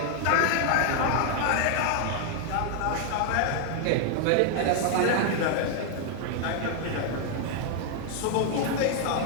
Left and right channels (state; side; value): different; both; correlation 0.00